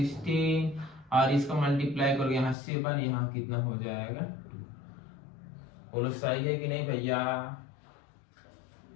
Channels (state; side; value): drops out; right; at 2.6 s